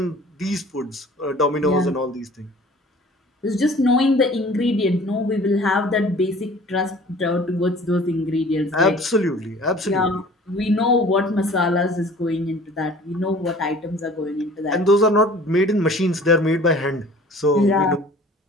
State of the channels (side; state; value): both; normal; correlation 0.48